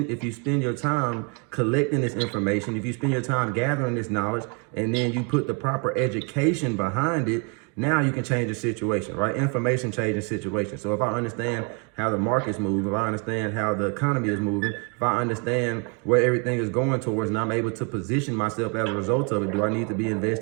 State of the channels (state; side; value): quieter; left; 34.7 dB